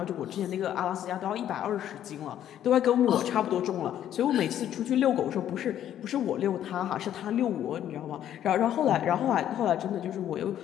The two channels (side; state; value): right; quieter; 10.9 dB